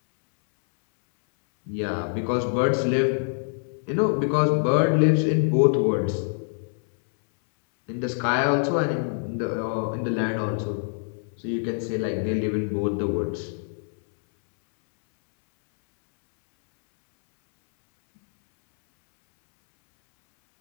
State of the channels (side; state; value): right; silent; 62 dB below the other